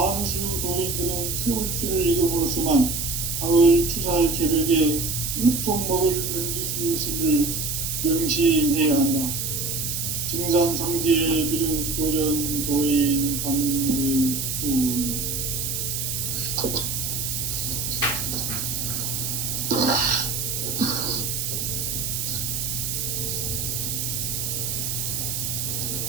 도인들은 태울주를 읽음으로써만 가을 추살 개벽에 으통먹을 넘길 수 있음을 명심해야 한다. 증산상제 비륵도전 도인 강대훈.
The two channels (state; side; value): noise; right; hiss, 2 dB below the sound